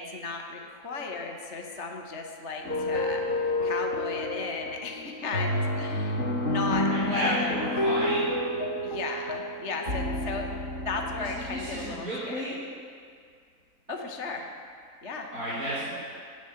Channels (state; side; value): late; left; 4.0 ms